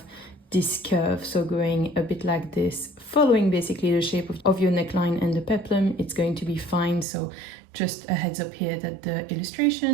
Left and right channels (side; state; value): left; drops out; at 7.1 s